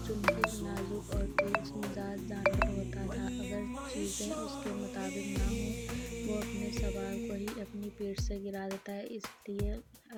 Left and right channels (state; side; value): identical; both; correlation 1.00